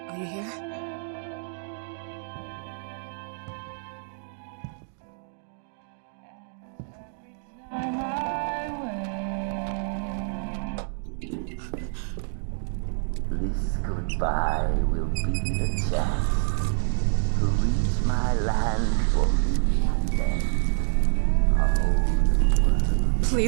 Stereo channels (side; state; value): left; silent; digital silence